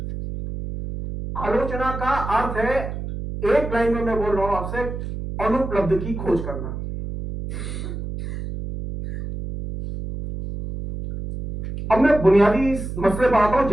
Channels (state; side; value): noise; right; hum, 7 dB below the sound